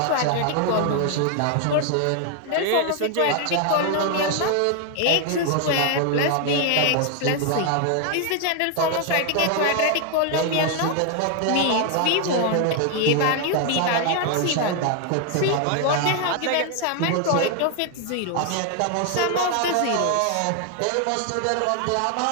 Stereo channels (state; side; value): different; both; correlation 0.00